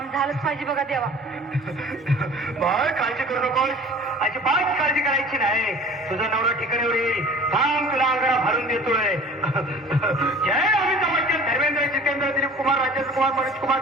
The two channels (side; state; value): both; normal; correlation 0.45